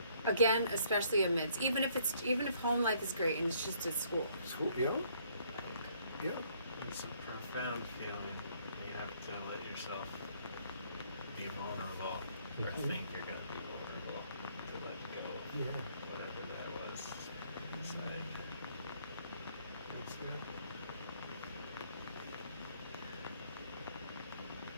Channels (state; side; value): inverted; both; correlation -0.65